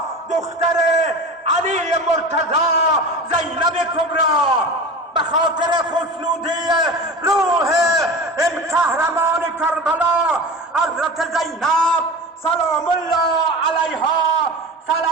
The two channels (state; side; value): normal; both; correlation 0.32